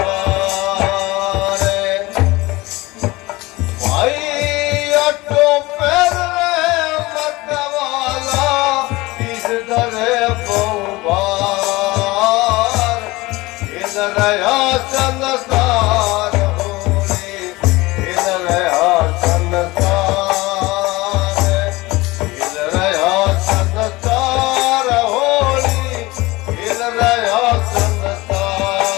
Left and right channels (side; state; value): right; quieter; 21.1 dB